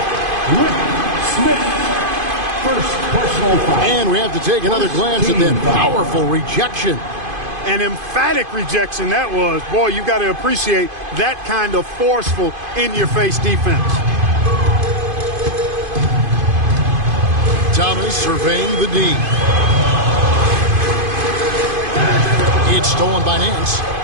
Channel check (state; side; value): late; left; 2.5 ms